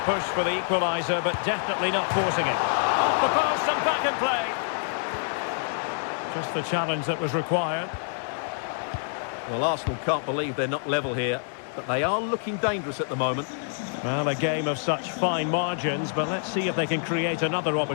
push for the equaliser, but definitely not forcing it. Off the post and back in play. Just the challenge that was required. Well, Arsenal can't believe they're not level here, but they are looking dangerous at the moment. Well, a game of such fine margins, but let's see if they can create another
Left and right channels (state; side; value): silent; right; digital silence